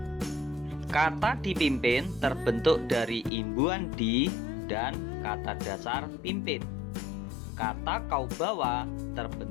Kata dipimpin terbentuk dari imbuhan di dan kata dasar pimpin. Kata kau bawa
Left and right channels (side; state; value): right; drops out; at 3.3 s